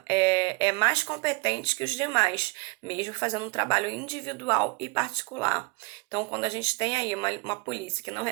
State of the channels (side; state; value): left; quieter; 28.1 dB